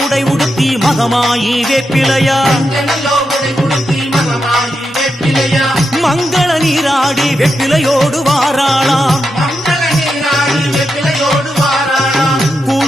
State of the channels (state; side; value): normal; both; correlation 0.86